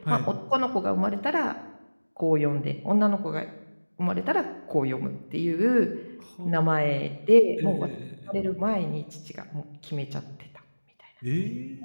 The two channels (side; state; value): both; inverted; correlation -1.00